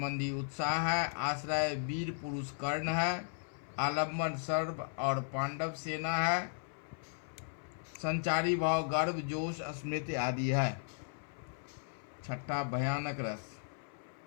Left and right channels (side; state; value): right; silent; 54 dB below the other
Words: उत्साह है, आश्रय वीर पुरुष कर्ण है, आलम्बन सर्व और पांडव सेना है, संचारी भाव गर्व, जोश, स्मृति आदि है। छठा भयानक रस।